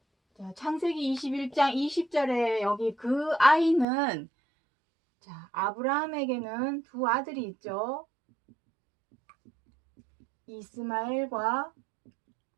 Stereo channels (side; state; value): left; drops out; at 3.9 s